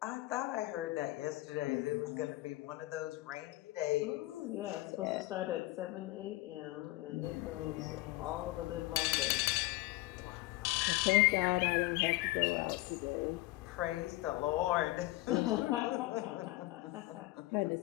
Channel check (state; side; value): quieter; right; 19.8 dB